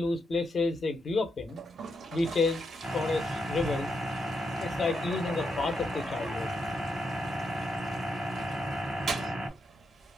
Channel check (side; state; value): both; normal; correlation 0.82